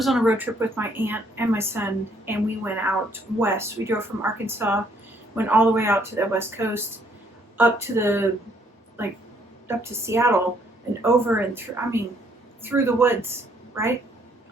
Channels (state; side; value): normal; both; correlation 0.66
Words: on a road trip with my aunt and my son, and we went out west. We drove from Arkansas, went all the way out to the west coast, up to Seattle, and over and through, through the woods, right?